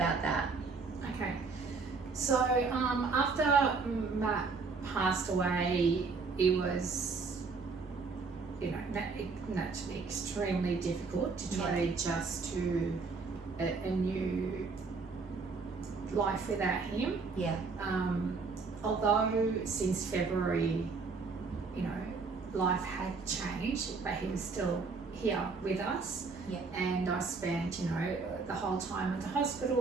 that. Okay, so after Matt passed away, it was, naturally extremely difficult to try to adjust to a new life without him. Yeah. Although since February, life had changed, but he was still here with us. Yeah. And I spent, the whole time at the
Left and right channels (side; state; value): left; quieter; 4.5 dB